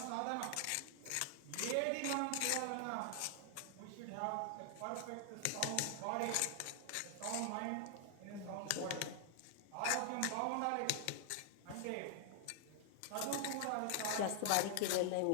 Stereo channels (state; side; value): different; both; correlation 0.00